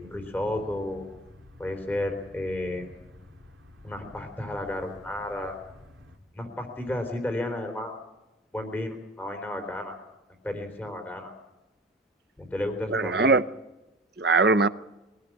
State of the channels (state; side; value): normal; both; correlation 0.40